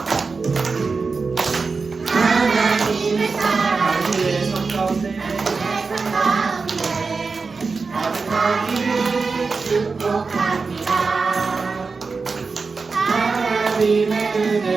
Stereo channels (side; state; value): left; quieter; 4.5 dB